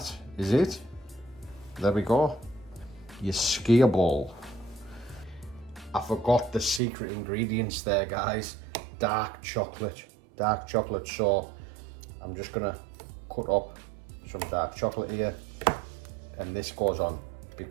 is it. There we go. Your skier ball. I forgot the secret ingredients there, guys. Dark chocolate. Dark chocolate. So I'm just gonna cut up some dark chocolate here, and this goes on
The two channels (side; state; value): left; drops out; at 6.8 s